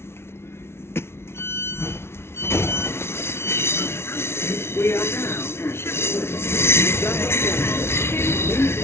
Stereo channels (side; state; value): right; late; 0.12 ms